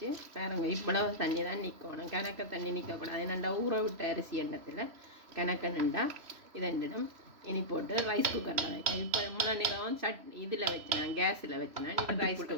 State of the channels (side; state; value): left; late; 3.0 ms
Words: பாருங்க, இவ்வளவு தண்ணி தான் நிற்கணும். கணக்க தண்ணி நிற்கக்கூடாது. என்னண்டா ஊற விட்ட அரிசி எண்ணத்தில் கணக்க நின்றா இதெண்டிடும். இனி போட்டு ரைஸ் குக்கரில் வைக்கணும். இப்போ இவ்வளோ நேரம் இதில் வச்சினேன், கேஸில் வச்சினேன்.